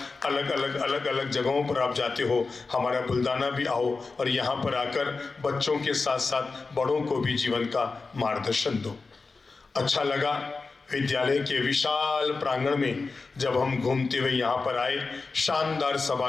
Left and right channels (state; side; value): quieter; right; 4.1 dB